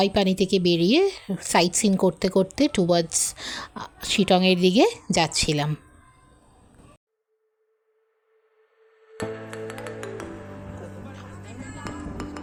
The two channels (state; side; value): identical; both; correlation 1.00